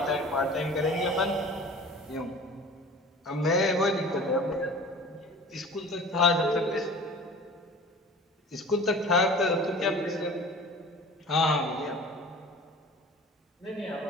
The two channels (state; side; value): normal; both; correlation 0.42